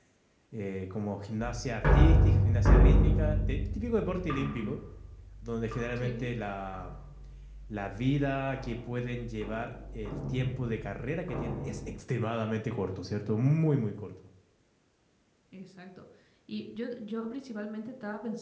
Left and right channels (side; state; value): both; identical; correlation 1.00